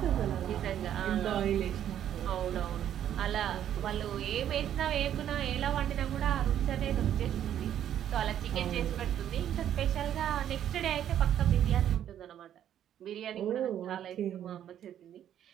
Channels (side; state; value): left; quieter; 10.5 dB